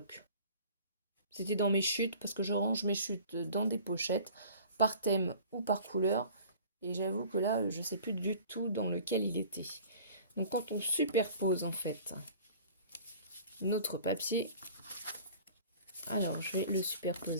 C'était dans mes chutes parce que je range mes chutes dans des pochettes par thème ou par couleur. Et j'avoue que là je sais plus du tout dans lequel il était. Donc quand on superpose en fait notre papier, alors je vais le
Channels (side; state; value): both; inverted; correlation -0.46